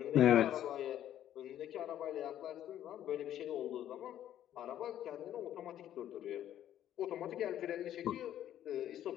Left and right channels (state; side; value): quieter; right; 11.5 dB